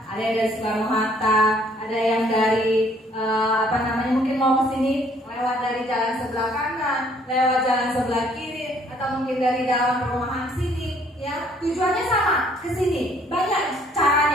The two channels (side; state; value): both; normal; correlation 0.62